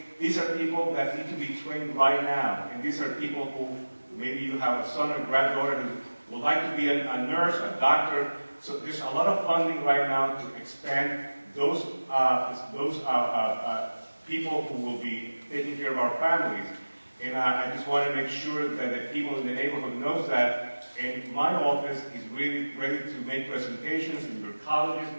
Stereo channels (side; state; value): both; inverted; correlation -1.00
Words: These are people that need to be trained right now. And these are people who, maybe you have a son or granddaughter who would like to be a nurse, a doctor. So there's a lot of funding right now to expand those people who will be taking care of our families. And I just want to make sure that the people in the neighborhood knows that. And my office is really ready to make presentations in your colleges